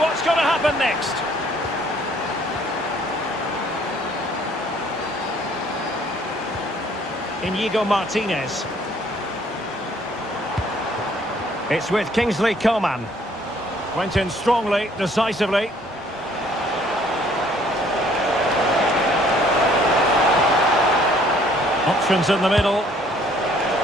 going to happen next? Inigo Martinez. It's with Kingsley Coman. Went in strongly, decisively. Options in the middle.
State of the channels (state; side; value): normal; both; correlation 0.60